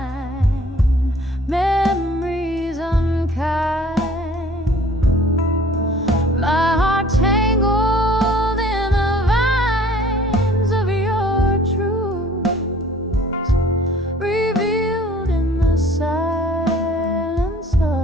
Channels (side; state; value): both; normal; correlation 0.52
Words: memories unkind. My heart tangled in the vines of your truth, revealed in the silence